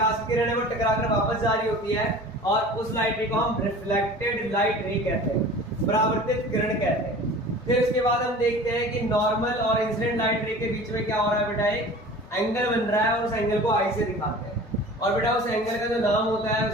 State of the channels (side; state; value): both; normal; correlation 0.41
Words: की किरण है वो टकराकर वापस जा रही होती है, और उस लाइट रे को हम रिफ्लेक्टेड लाइट रे कहते हैं, परावर्तित किरण कहते हैं। फिर उसके बाद हम देखते हैं कि नॉर्मल और इंसिडेंट लाइट रे के बीच में क्या हो रहा है बेटा, एक एंगल बन रहा है, और उस एंगल को आई से दिखाते हैं। और बेटा उस एंगल का जो नाम होता है